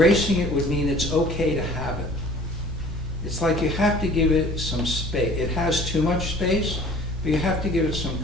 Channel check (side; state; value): both; normal; correlation 0.50